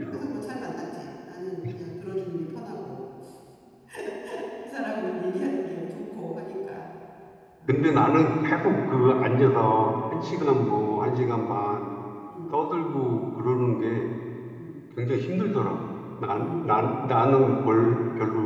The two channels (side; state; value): both; identical; correlation 1.00